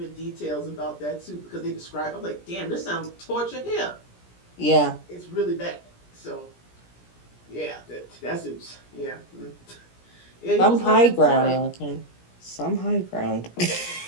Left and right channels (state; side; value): late; right; 17 ms